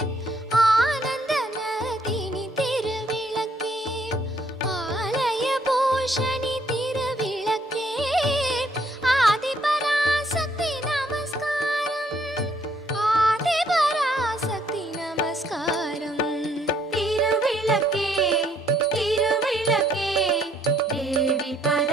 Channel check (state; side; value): normal; both; correlation 0.67